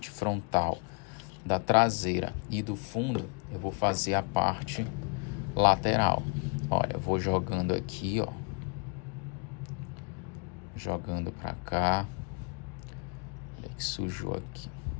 frontal da traseira e do fundo, eu vou fazer a parte lateral. Olha, eu vou jogando aqui, ó. Jogando pra cá. Olha que sujou aqui.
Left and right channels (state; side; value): quieter; right; 37.7 dB